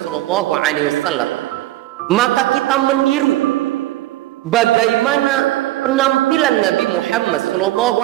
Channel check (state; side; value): quieter; left; 16.1 dB